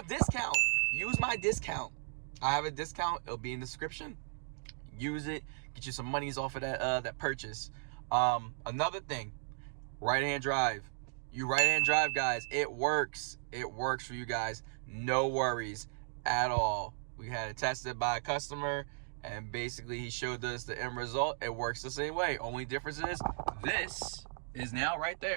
discount. I have a discount. It'll be in the description. Use it, get you some monies off of that purchase. Another thing, right-hand drive. You right-hand drive, guys, it works for you guys. No worries at all. We had it tested by a customer and basically he showed us the end result. It works the same way. Only difference is this is now right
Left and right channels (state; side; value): silent; left; digital silence